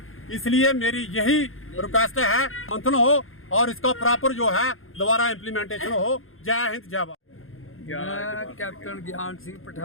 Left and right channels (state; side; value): late; right; 0.60 ms